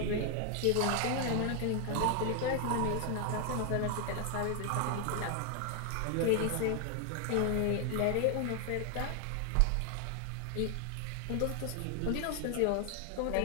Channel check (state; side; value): different; both; correlation 0.00